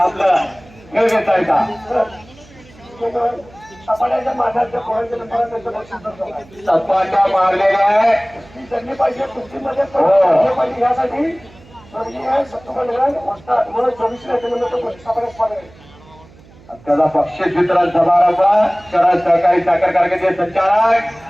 खेळ घेतायचा. सपाट्याच्या माठाच्या पोरांच्या नंबरात त्याचं बक्षीस सपाट्या मारलेल्या आहे. त्यांनी पाहिजे कुस्तीमध्ये पाहिजे यासाठी त्याचा बक्षीस वितरण समारंभ शरद सहकारी साखर कारखान्याचे संचालक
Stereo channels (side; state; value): right; noise; hum, 24 dB below the sound